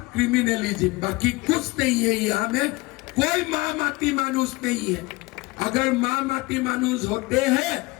क्रिमिनलिज्म। बाकी कुछ नहीं है यहाँ में, कोई माँ माटी मानुस नहीं है। अगर माँ माटी मानुस होते हैं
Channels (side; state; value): right; quieter; 23.1 dB